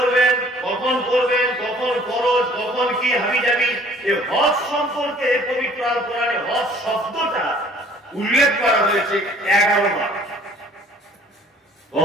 কখন করবেন, কখন খরচ, কখন কি হাবিজাবি, এই হজ সম্পর্কে পবিত্র আল কোরআনে হজ শব্দটা উল্লেখ করা হয়েছে 11 বার।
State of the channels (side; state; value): both; normal; correlation 0.54